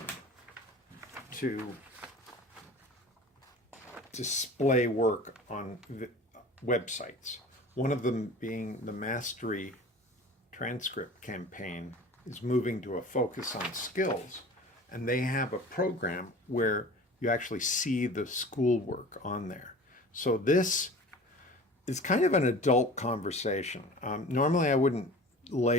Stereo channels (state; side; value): normal; both; correlation 0.40